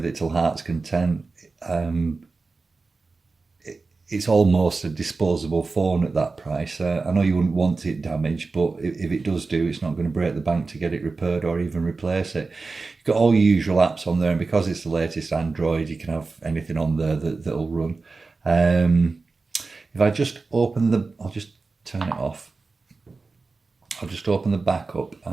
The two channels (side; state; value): left; quieter; 4.0 dB